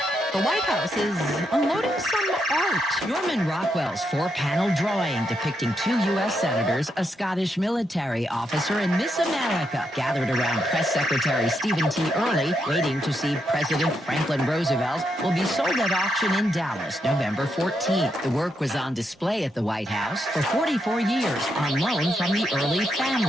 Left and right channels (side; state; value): both; normal; correlation 0.80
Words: The White House is unloading some art. Norman Rockwell's four-panel drawing depicting two U.S. senators, a Scottish military officer, and Miss America gathered around Press Secretary Stephen T. Early, waiting to see President Franklin Roosevelt, will be sold at auction in Dallas November 14th. The work was on display at the White House for 44 years on loan from the Early